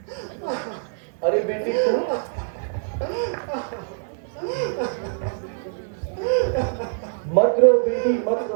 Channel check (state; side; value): silent; left; digital silence